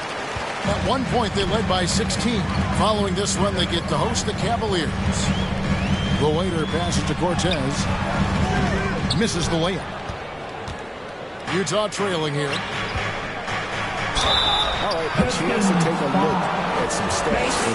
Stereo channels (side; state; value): both; identical; correlation 1.00